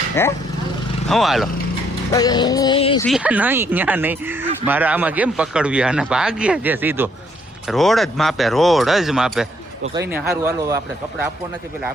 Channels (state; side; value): normal; both; correlation 0.69